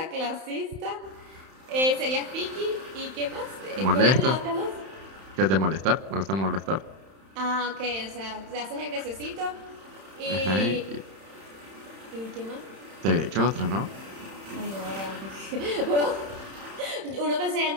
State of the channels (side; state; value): left; late; 31 ms